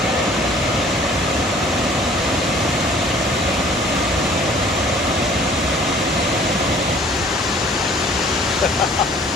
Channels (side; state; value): both; normal; correlation 0.53